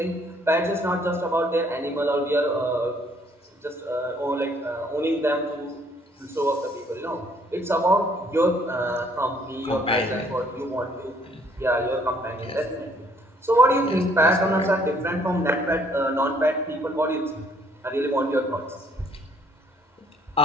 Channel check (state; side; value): normal; both; correlation 0.63